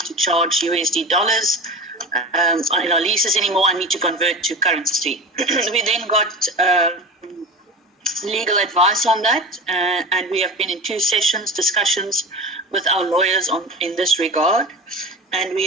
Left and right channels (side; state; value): both; normal; correlation 0.32